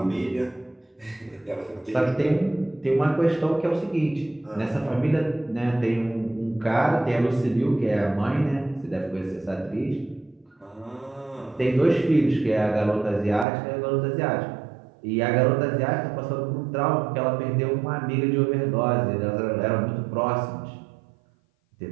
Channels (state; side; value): drops out; left; at 13.5 s